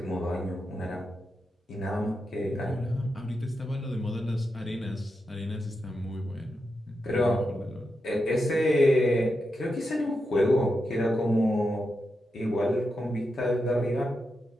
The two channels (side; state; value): both; normal; correlation 0.87